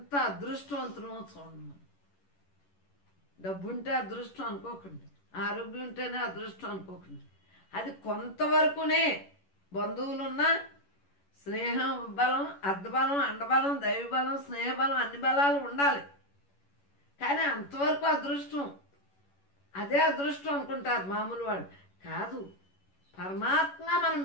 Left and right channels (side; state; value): right; late; 11 ms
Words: అదృష్టవంతులమో చూడండి. డబ్బుంటే అదృష్టం అనుకోకండి, ఆరోగ్యం ఉంటేనే అదృష్టం అనుకోకండి. అది కొంతవరకునే. బంధువులున్నా స్నేహం బలం, అర్ధబలం, అండబలం, దైవబలం, స్నేహబలం అన్ని బలాలు ఉండాలి. కానీ అంతవరకు అదృష్టం, అదే అదృష్టం అనుకుంటారు మామూలు వాళ్ళు. కాదు, పరమాత్మగా మనం